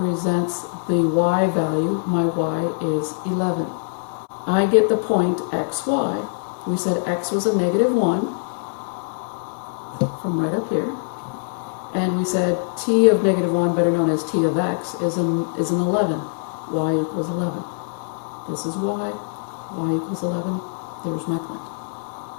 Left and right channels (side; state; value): right; silent; digital silence